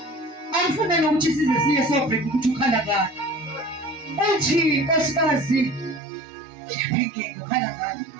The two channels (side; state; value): left; drops out; at 6.0 s